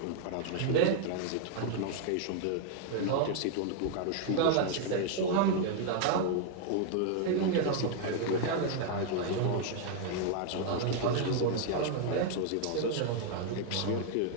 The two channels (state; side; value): different; both; correlation 0.00